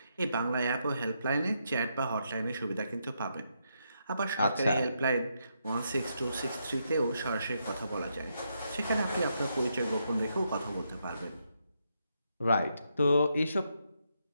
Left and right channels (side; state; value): both; inverted; correlation -0.80